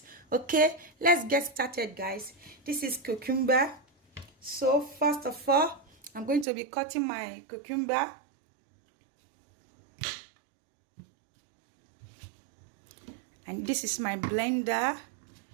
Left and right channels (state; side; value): drops out; left; at 6.5 s